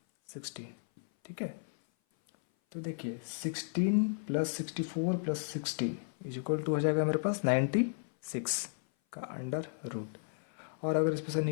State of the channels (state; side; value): silent; right; 55 dB below the other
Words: 16, ठीक है। तो देखिए 16 plus 64 plus 60 is equal to हो जाएगा मेरे पास 96 का अंडर रूट। और अगर इसमें से